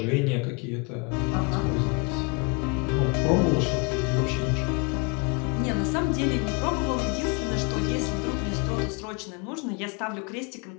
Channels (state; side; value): quieter; right; 32.3 dB